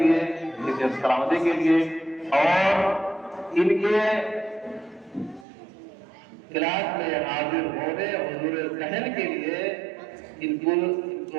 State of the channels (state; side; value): drops out; left; at 5.5 s